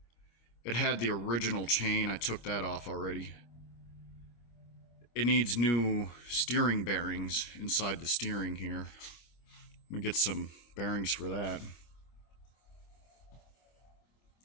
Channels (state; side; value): late; right; 25 ms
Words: It had the original chain. I took that off already. It needs new steering bearings inside the steering here. Let me get some bearings for that.